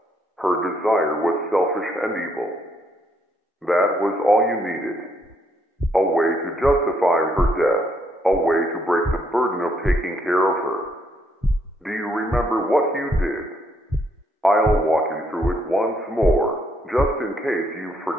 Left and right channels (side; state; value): both; normal; correlation 0.72